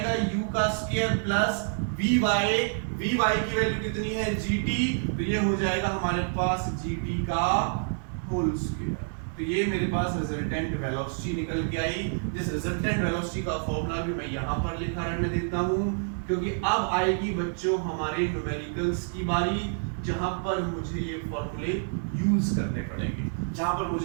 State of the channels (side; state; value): left; silent; digital silence